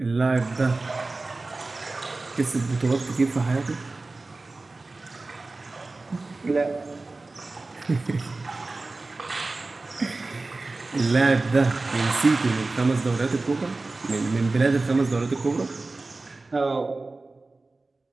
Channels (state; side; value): quieter; left; 3.4 dB